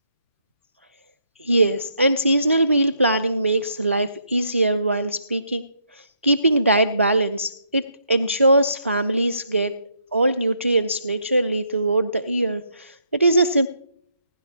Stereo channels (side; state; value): both; inverted; correlation -0.74